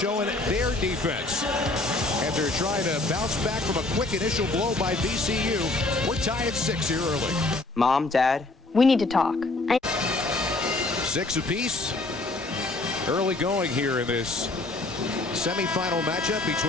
their defense. And they're trying to bounce back from a quick initial blow by VCU. We're tied at 6 here early. Mom, Dad, we need to talk. 6 apiece. Early going here in this semifinal matchup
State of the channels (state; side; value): quieter; right; 3.0 dB